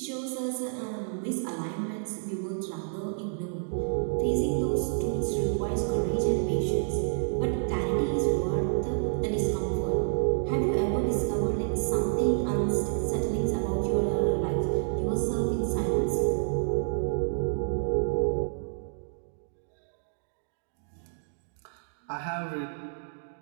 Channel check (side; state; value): left; silent; digital silence